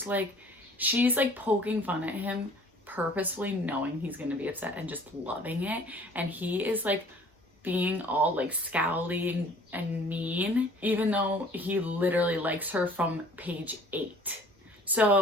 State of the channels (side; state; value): both; normal; correlation 0.52